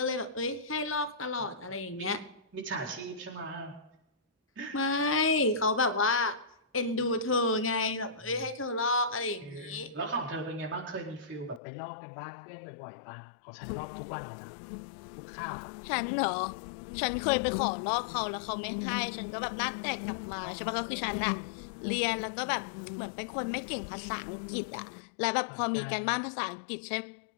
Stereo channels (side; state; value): right; drops out; at 11.6 s